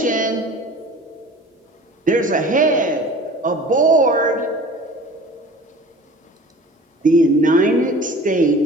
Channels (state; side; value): normal; both; correlation 0.42